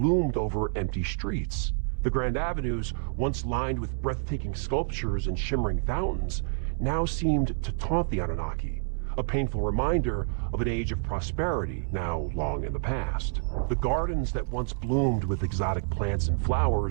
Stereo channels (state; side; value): silent; left; 58 dB below the other